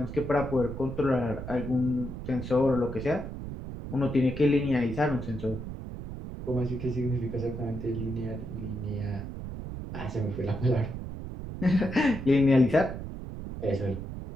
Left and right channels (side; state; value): right; noise; rumble, 8 dB below the sound